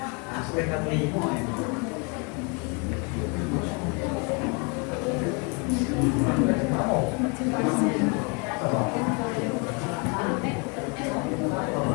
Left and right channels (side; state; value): right; quieter; 33.1 dB